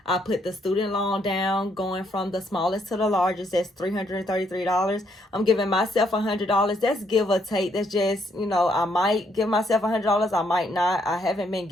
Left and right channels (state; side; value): normal; both; correlation 0.72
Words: I put the student loan down, going from the smallest to the largest. That's $333. I'm giving myself $100. That's give or take. That's just, I might give myself $100. I might not. I haven't been